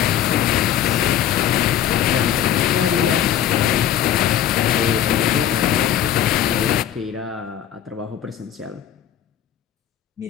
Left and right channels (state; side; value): quieter; right; 10.7 dB